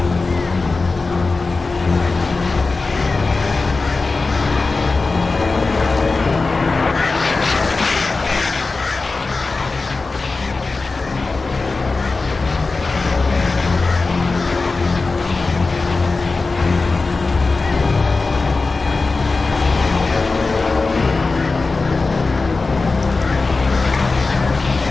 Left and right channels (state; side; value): quieter; right; 3.8 dB